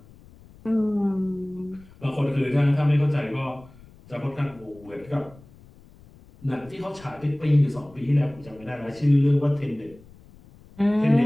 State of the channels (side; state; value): left; noise; rumble, 24 dB below the sound